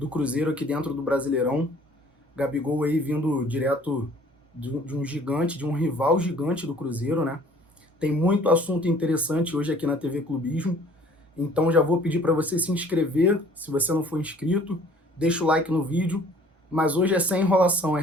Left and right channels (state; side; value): normal; both; correlation 0.54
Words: Cruzeiro aqui dentro do Brasileirão. Gabigol aí vindo direto de um gigante, de um rival gigante do Cruzeiro, né? Tem muito assunto interessante hoje aqui na TV Clubismo. Então já vou pedir para você se inscrever, se você não for inscrito, deixa o like no vídeo. Mas hoje é sem enrolação, hein,